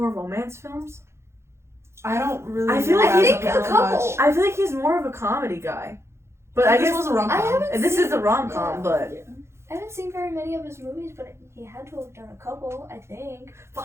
romance films? I don't really. I feel know like that he's so a couple. much. I feel like he's more of a comedy guy. But I This guess was a rom I com. haven't this seen is the rom-com, yeah. but I haven't seen very many of his movies, but he had to have done a couple, I think. But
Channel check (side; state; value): left; late; 0.13 ms